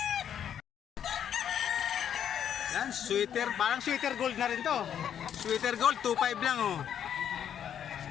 Yan, sweater. Parang sweater gold na rin to. Sweater gold, 2.5 lang oh.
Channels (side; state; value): right; quieter; 9.2 dB